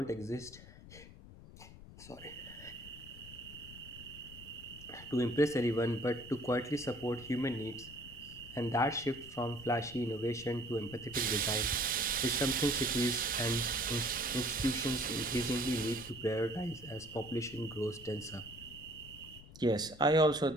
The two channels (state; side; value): noise; left; rumble, 17 dB below the sound